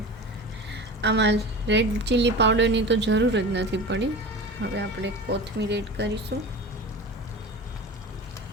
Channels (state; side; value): normal; both; correlation 0.33